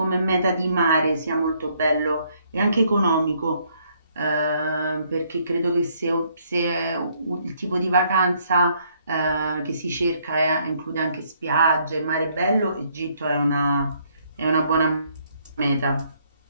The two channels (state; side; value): inverted; both; correlation -0.68